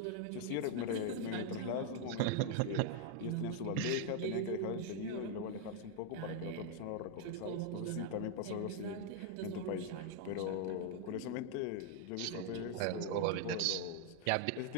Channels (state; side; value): different; both; correlation 0.00